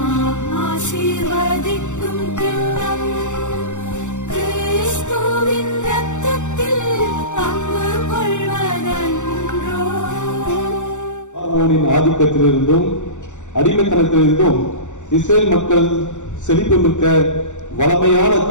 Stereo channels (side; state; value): right; late; 0.85 ms